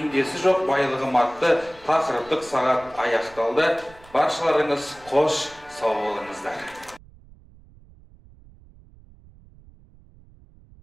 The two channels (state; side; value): noise; right; rumble, 24 dB below the sound